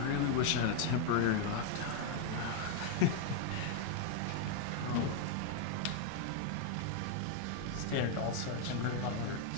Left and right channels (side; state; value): both; different; correlation 0.00